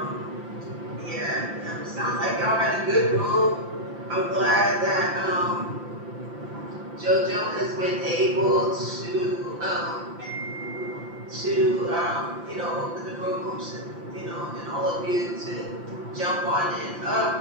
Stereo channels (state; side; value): late; left; 5.8 ms